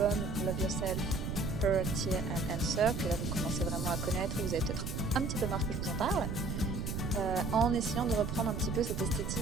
Love Yourself, Her, Tear and Answer, que là vous commencez vraiment à connaître, vous avez peut-être un petit peu marre que je vous en parle, en essayant de reprendre un petit peu cette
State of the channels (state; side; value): noise; right; rumble, 3 dB below the sound